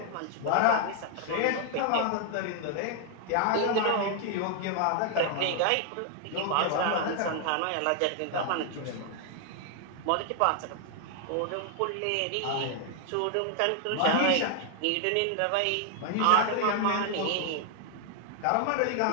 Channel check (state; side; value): different; both; correlation 0.00